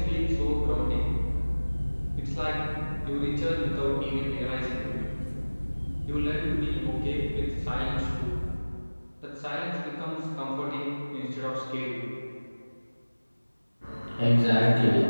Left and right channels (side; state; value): both; inverted; correlation -1.00